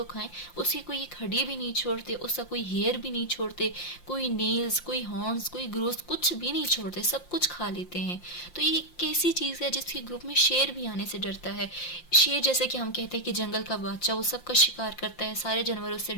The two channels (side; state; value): right; late; 5.7 ms